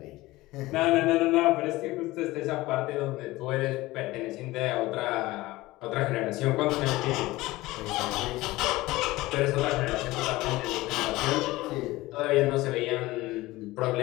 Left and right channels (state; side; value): quieter; right; 19.0 dB